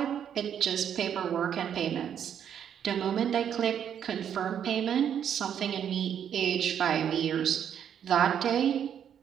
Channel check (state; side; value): quieter; left; 8.9 dB